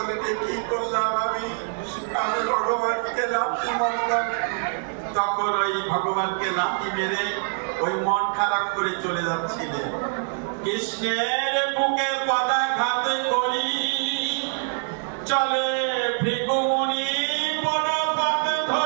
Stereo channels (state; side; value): silent; left; 62 dB below the other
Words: কি করলাম আমি ভগবানকে লাথি মারলাম। তখন ওই ভগবানকে লাথি মেরে ওই মন খারাপ করে চলে যাচ্ছিলেন। কৃষ্ণের বুকে পদাঘাত করি চলে ভৃগুমুনি বনপথ